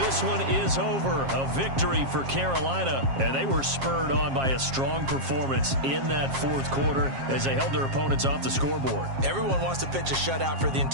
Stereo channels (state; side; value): late; left; 7.4 ms